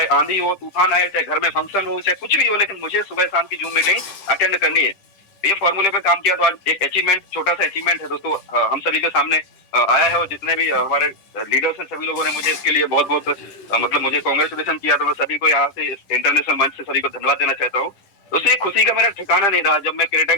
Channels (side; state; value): right; late; 11 ms